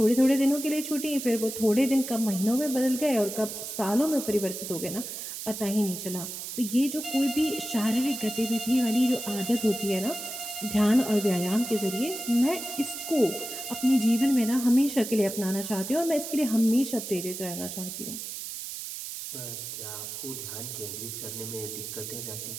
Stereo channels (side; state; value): right; noise; hiss, 7 dB below the sound